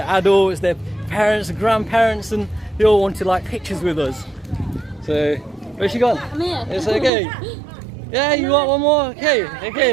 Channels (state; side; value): drops out; left; at 7.1 s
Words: adults, their parents, and grandparents, and they all wanted like pictures with us. So, where's she gone? I'm here. It's okay. Yeah, you want one more?